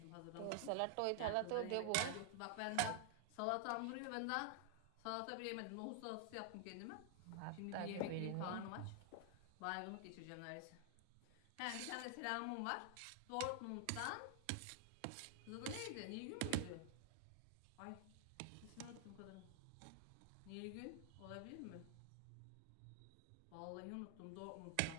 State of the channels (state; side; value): different; both; correlation 0.00